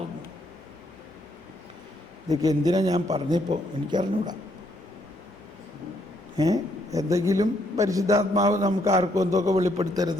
ഇതൊക്കെ എന്തിനാ ഞാൻ പറഞ്ഞപ്പോൾ എനിക്കറിഞ്ഞൂടാ. എന്തെങ്കിലും പരിശുദ്ധാത്മാവ് നമുക്ക് ആർക്കും എന്തൊക്കെ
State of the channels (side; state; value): both; normal; correlation 0.72